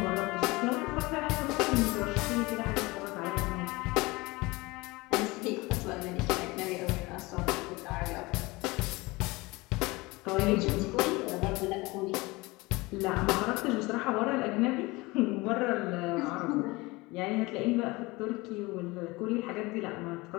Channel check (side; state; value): right; quieter; 22.8 dB